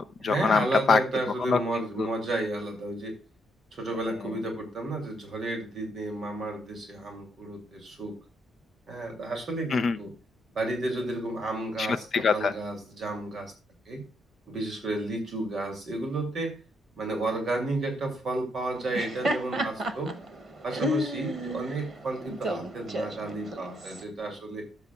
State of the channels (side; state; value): both; normal; correlation 0.75